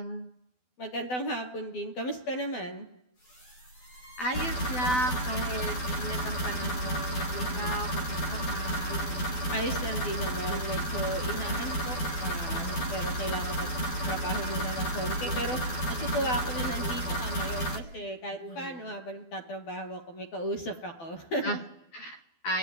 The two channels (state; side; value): late; right; 12 ms